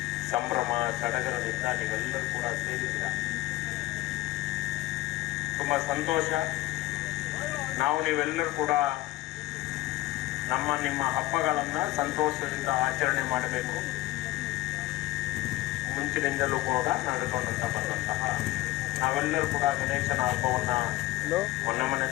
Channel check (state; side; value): quieter; right; 17.3 dB